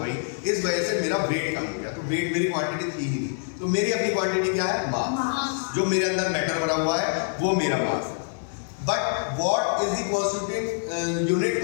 गई, इस वजह से मेरा वेट कम हो गया। तो वेट मेरी क्वांटिटी थी ही नहीं, तो मेरी अपनी क्वांटिटी क्या है? मास। जो मेरे अंदर मैटर भरा हुआ है वो मेरा मास है। But what is the constituting unit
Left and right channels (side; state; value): right; silent; 60 dB below the other